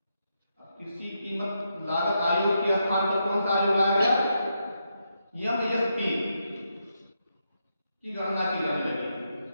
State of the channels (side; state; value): both; inverted; correlation -0.83